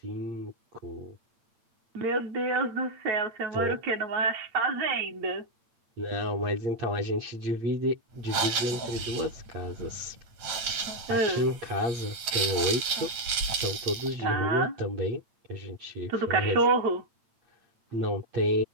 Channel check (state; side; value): late; left; 8.7 ms